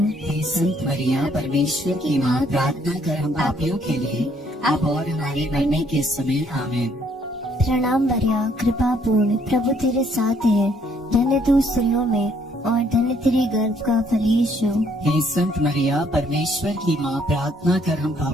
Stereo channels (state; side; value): normal; both; correlation 0.66